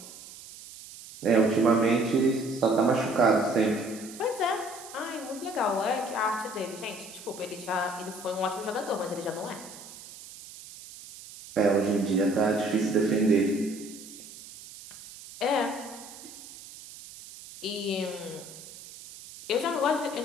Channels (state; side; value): noise; right; hiss, 16 dB below the sound